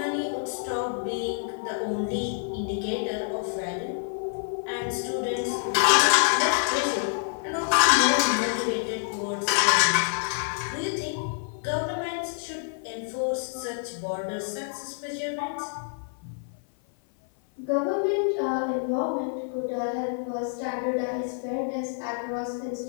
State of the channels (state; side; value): silent; right; 55 dB below the other